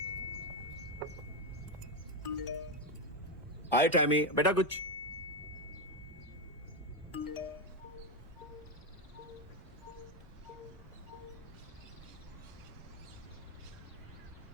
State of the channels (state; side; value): normal; both; correlation 0.09